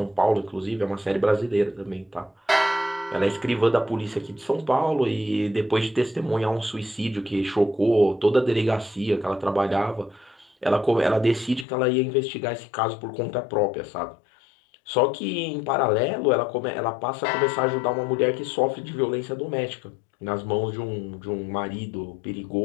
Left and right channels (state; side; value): drops out; right; at 11.7 s